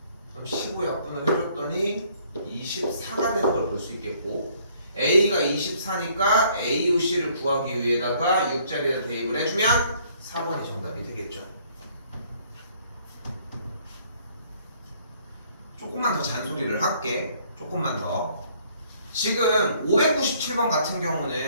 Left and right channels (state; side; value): inverted; both; correlation -0.62